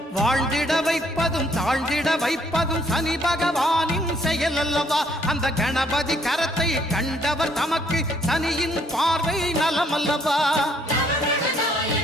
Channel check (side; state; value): both; normal; correlation 0.66